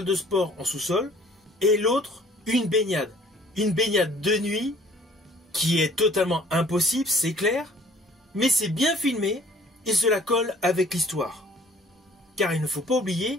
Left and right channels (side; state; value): both; normal; correlation 0.54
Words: de sport en sous-sol, et l'autre, une baignade. Une baignade de nuit qui est totalement impossible, c'est clair, mais c'est bien filmé et cela colle avec l'histoire. Car il ne faut pas oublier